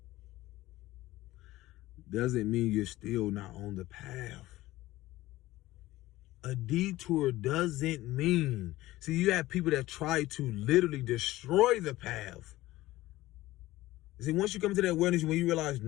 doesn't mean you're still not on the path. A detour doesn't mean... See, you have people that try to literally destroy the path. See, once you come to that awareness, when you realize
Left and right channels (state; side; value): quieter; right; 17.1 dB